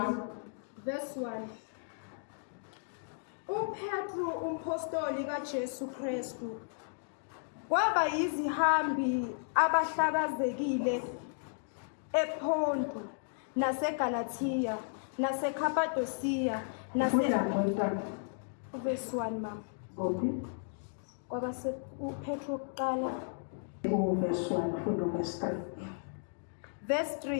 Verse 1. UPetru umpostoli kaJesu Kristu kwaba yizihambi abahlakazekile ePonto naseGalatia naseKhapadosiya Verse 1 mama. Kwaba uPetru kuqala Verse 1 funda verse 3. Verse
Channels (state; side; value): silent; right; digital silence